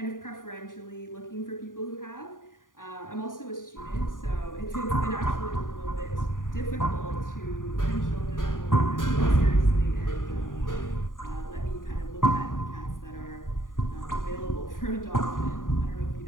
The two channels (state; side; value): late; right; 0.89 ms